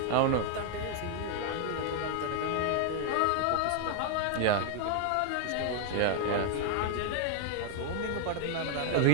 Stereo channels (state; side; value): different; both; correlation 0.00